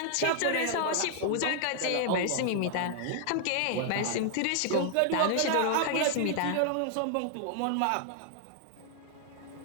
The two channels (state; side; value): different; both; correlation 0.00